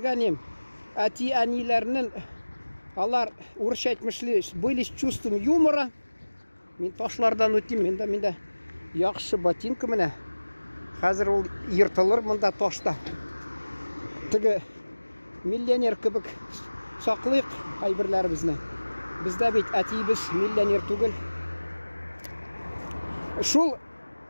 Әти әнилерінің алар орысша айтмышлы, были с чувством юмора. Мен ташлардан өтем, менде яқшы ботинка міне. Қазір ол ертылыр мұнда ташта. Тігі миллионер кібік сақлық айбірлер бізні. Бізді бейт әтейбіз миллионер түгіл. Шул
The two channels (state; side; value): inverted; both; correlation -1.00